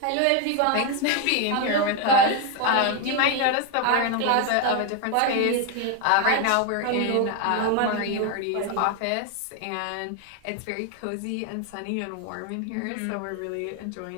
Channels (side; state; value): both; different; correlation 0.01